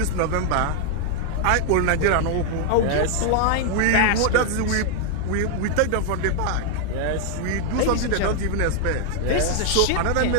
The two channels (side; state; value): both; different; correlation 0.00